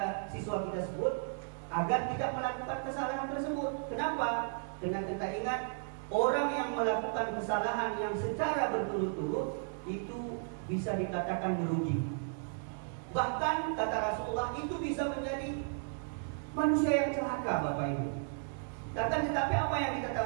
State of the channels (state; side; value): silent; left; digital silence